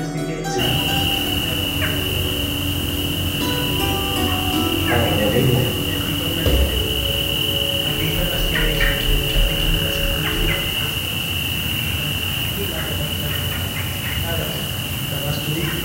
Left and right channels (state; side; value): identical; both; correlation 1.00